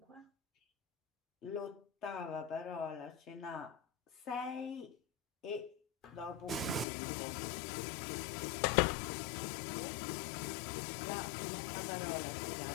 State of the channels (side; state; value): right; drops out; at 6.9 s